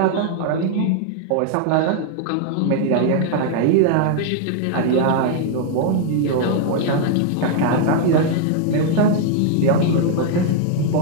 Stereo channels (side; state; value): both; different; correlation 0.00